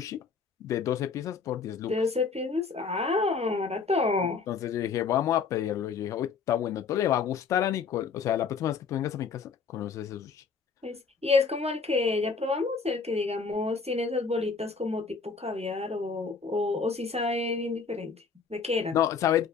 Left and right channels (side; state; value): right; quieter; 5.3 dB